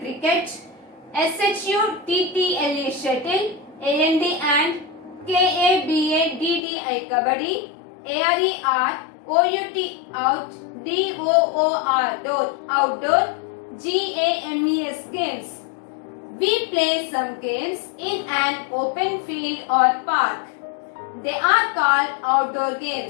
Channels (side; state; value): right; drops out; at 6.6 s